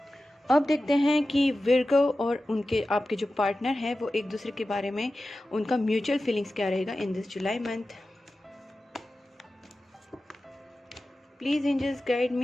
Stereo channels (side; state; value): both; normal; correlation 0.94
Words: अब देखते हैं कि विर्गो और उनके आपके जो पार्टनर हैं वो एक दूसरे के बारे में उनका म्यूचुअल फीलिंग्स क्या रहेगा in this July month. Please angels guide